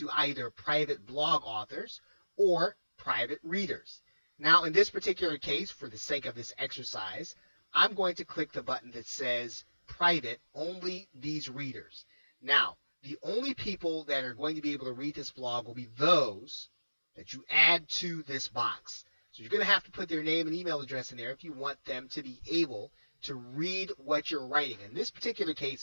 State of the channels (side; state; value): both; inverted; correlation -1.00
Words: either private blog authors or private readers. Now, in this particular case, for the sake of this exercise, I'm going to click the button that says private, only these readers. Now, the only people that are going to be able to read this blog will be those that you add to this box. So you're going to have to put their name and email address in there if you want them to be able to read what you're writing. In this particular